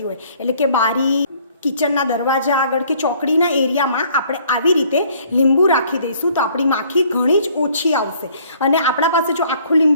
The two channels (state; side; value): inverted; both; correlation -0.59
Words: હોય, એટલે કે બારી, કિચનના દરવાજા આગળ કે ચોકડીના એરિયામાં આપણે આવી રીતે લીંબુ રાખી દઈશું તો આપણી માખી ઘણી જ ઓછી આવશે. અને આપણા પાસે જો આખું